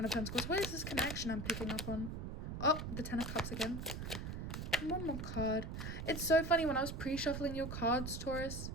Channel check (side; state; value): right; noise; rumble, 5 dB below the sound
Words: of Pentacles? What is this connection I'm picking up on? Oh, the Ten of Cups again. One more card. It's so funny, when I was pre-shuffling your cards, Taurus,